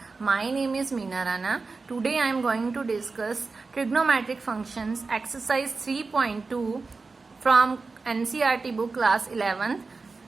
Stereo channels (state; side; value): quieter; left; 4.1 dB